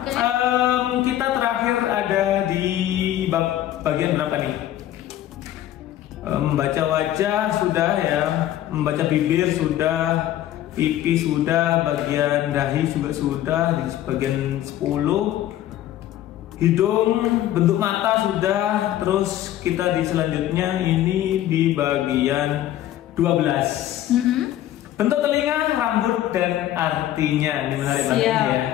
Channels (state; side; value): quieter; right; 12.8 dB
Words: Kita terakhir ada di bab bagian berapa nih? Membaca wajah sudah ya, membaca bibir sudah, pipi sudah, bagian dahi juga sudah, di bagian 10, hidung, bentuk mata sudah, terus kita di selanjutnya ini di bagian 12. Bentuk telinga, rambut, dan artinya. Ini menarik banget ya.